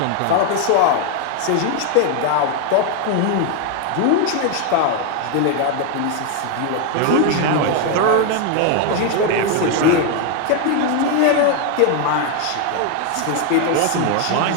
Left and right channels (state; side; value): different; both; correlation 0.01